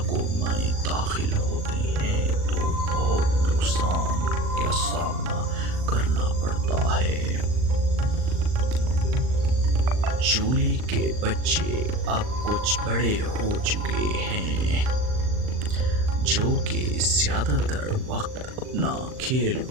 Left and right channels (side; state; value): left; late; 39 ms